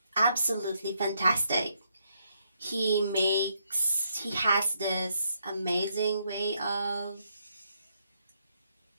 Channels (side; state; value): both; inverted; correlation -0.76